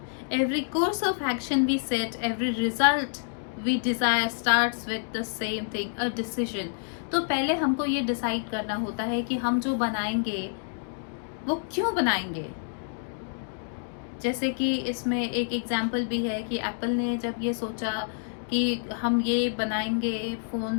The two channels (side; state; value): right; silent; digital silence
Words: every course of action we set, every result we desire starts with the same thing, a decision. तो पहले हमको ये डिसाइड करना होता है कि हम जो बनाएंगे वो क्यों बनाएंगे। जैसे कि इसमें एक एग्जाम्पल भी है कि एप्पल ने जब ये सोचा कि हम ये बनाएंगे, फ़ोन